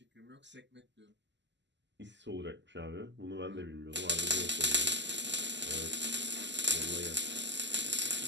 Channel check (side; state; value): left; late; 0.52 ms